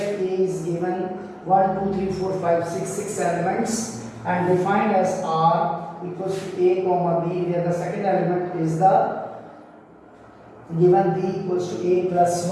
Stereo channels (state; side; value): identical; both; correlation 1.00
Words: A is given 1, 2, 3, 4, 5, 6, 6 elements and defined as R equals to A comma B, where the second element is the given B equals to A plus